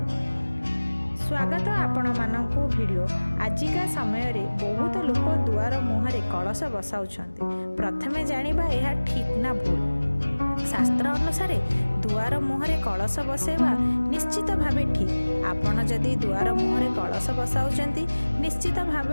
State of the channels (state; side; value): inverted; both; correlation -1.00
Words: स्वागत आपण मानकु भिडियो। आजिका समय रे बहुत लोक दुआर मुहरे कलश बसाउछंती। प्रथमे जानिबा यह ठीक ना भूल। शास्त्र अनुसार दुआर मुहरे कलश बसैबा निश्चित भावे ठीक। आपण जदि दुआर मुहरे कलश बसाउछंती निश्चित